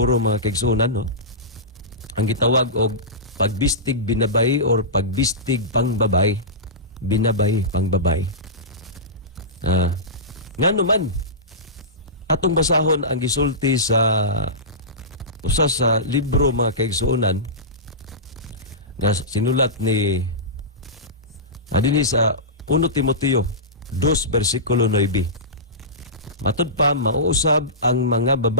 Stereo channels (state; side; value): normal; both; correlation -0.19